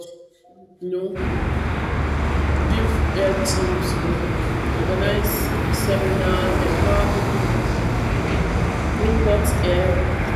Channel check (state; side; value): identical; both; correlation 1.00